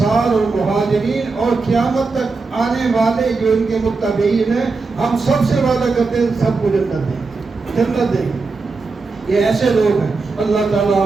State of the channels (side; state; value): left; quieter; 4.1 dB